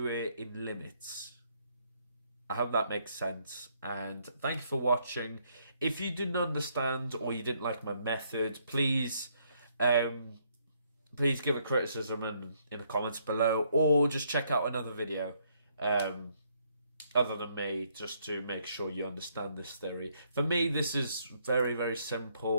it in limits. I hope that makes sense, and thank you for watching. If you didn't understand or you didn't like my method, please give a criticism in the comments below, or just check out another video other than me, just to make sure you understand this theory. For me, this is very, very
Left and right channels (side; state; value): both; inverted; correlation -0.70